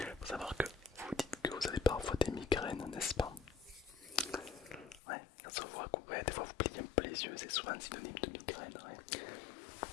Faut savoir que vous dites que vous avez parfois des migraines, n'est-ce pas? Ouais, ça se voit que ouais, des fois vous pliez un peu les yeux, c'est souvent synonyme de migraine. Ouais.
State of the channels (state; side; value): drops out; right; at 5.0 s